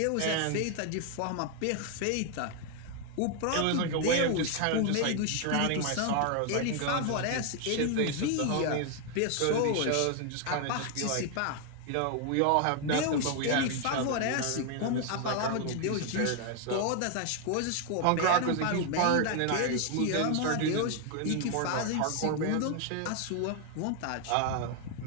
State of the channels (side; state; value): both; different; correlation 0.00